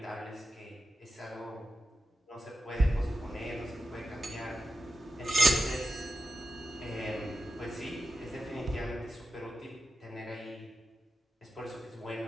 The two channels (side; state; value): both; normal; correlation 0.90